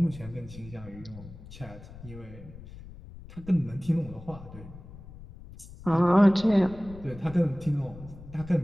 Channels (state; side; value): noise; left; rumble, 16 dB below the sound